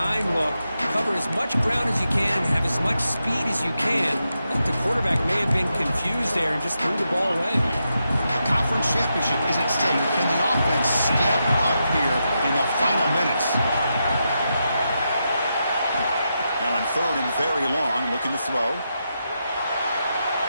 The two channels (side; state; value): both; inverted; correlation -0.86